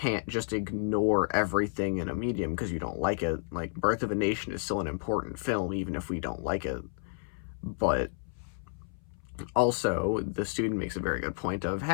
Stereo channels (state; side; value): silent; right; 57 dB below the other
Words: just ignore everything in a medium because you don't like it. Like, Birth of a Nation is still an important film even if we don't like it. But also the student makes a very good point of,